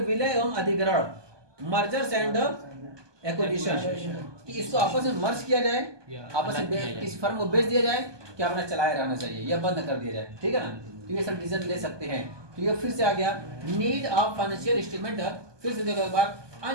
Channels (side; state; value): left; late; 1.2 ms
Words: विलय एवं अधिग्रहण, मर्जर्स एंड एक्विजिशन, कि इसको आपस में मर्ज किया जाए, आपस में किसी फर्म को बेच दिया जाए, कि अपना चलाए रहना चाहिए या बंद कर दिया जाए, ठीक है ना। तो ये सब डिसीजन ले सकते हैं। तो ये फिर से आ गया नीड ऑफ फाइनेंशियल स्टेटमेंट, फिर से देखो एक बार,